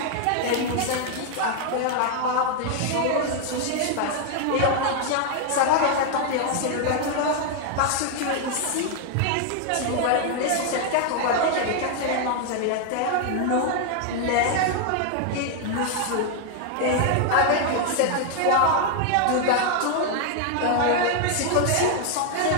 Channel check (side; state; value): both; different; correlation 0.00